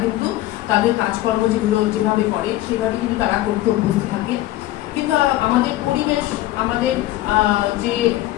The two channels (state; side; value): quieter; right; 15.8 dB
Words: কিন্তু তাদের কাজকর্ম যেগুলো যেভাবে করে সেভাবে কিন্তু তারা করতে অভ্যস্ত থাকে। কিন্তু আমাদের পরিবেশ, আমাদের যে